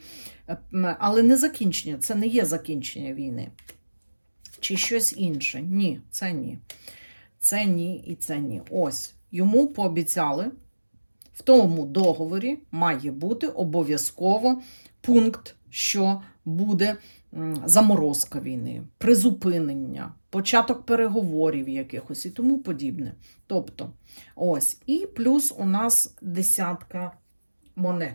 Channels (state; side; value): inverted; both; correlation -1.00